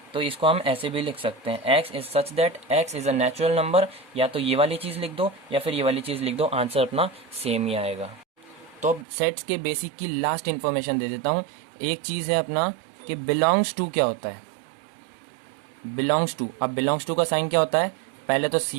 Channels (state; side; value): drops out; left; at 9.1 s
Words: तो इसको हम ऐसे भी लिख सकते हैं, x is such that x is a natural number. या तो ये वाली चीज़ लिख दो या फिर ये वाली चीज़ लिख दो, आंसर अपना सेम ही आएगा। तो अब सेट्स के बेसिक की लास्ट इन्फॉर्मेशन दे देता हूँ। एक चीज़ है अपना कि बिलोंग्स टू क्या होता है? बिलोंग्स टू, अब बिलोंग्स टू का साइन क्या होता है? पहले तो